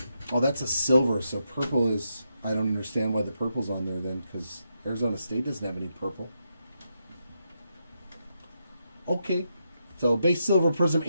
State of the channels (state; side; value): inverted; both; correlation -0.82